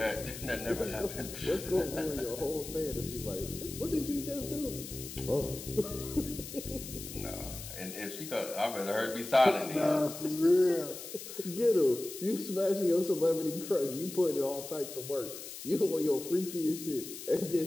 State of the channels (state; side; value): noise; left; hiss, 11 dB below the sound